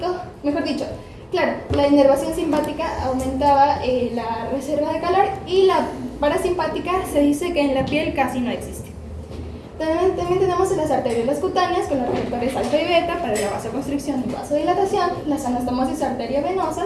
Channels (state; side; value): identical; both; correlation 1.00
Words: mejor dicho, claro, la inervación simpática aumentaba la reserva de calor, y la parasimpática se dice que en la piel casi no existe. También tenemos las arteriolas cutáneas con los receptores alfa y beta para la vasoconstricción y vasodilatación, las anastomosis